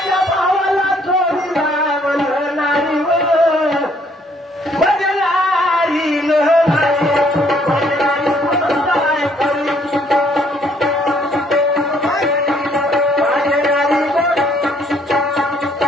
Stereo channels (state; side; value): normal; both; correlation 0.65